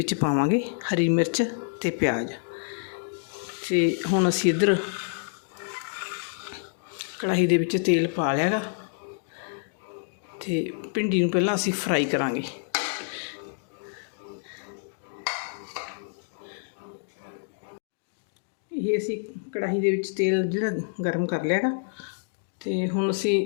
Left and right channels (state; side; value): silent; right; digital silence